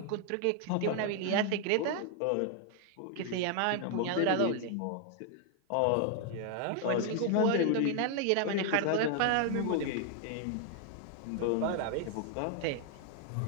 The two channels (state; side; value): different; both; correlation 0.00